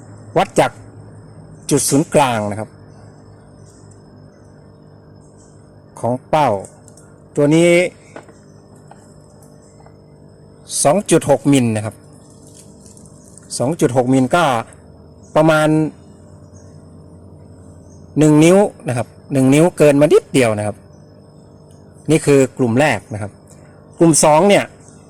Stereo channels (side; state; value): both; identical; correlation 1.00